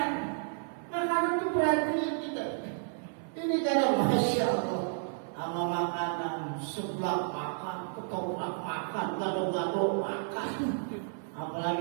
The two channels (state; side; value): silent; left; 57 dB below the other